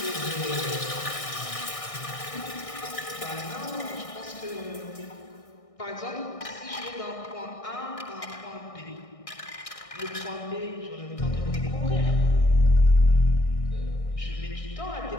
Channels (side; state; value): right; late; 1.6 ms